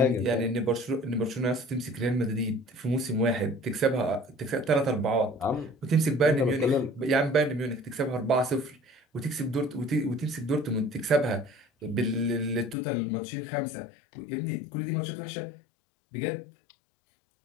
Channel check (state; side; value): drops out; right; at 12.8 s